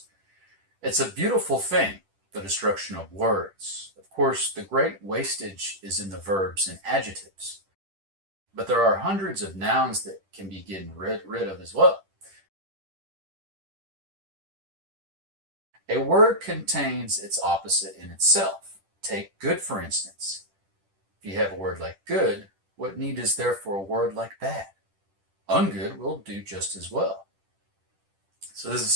it's a beautiful thing, the destruction of words. Of course, the great wastage is in the verbs and adjectives, but there are hundreds of nouns that can be getting rid of as well. A word contains its opposite in itself. Take good, for instance. If you have a word like good, what need is there for a word like bad? Ungood will do just as well. So this is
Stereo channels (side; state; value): left; late; 10 ms